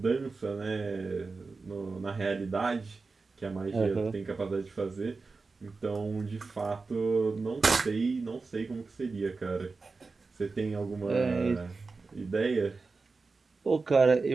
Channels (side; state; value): left; quieter; 4.1 dB